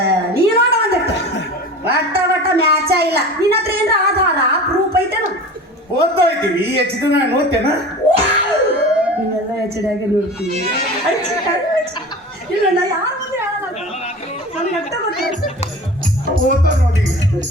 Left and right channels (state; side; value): normal; both; correlation 0.36